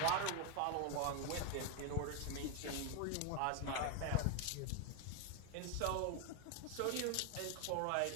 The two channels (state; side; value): different; both; correlation 0.01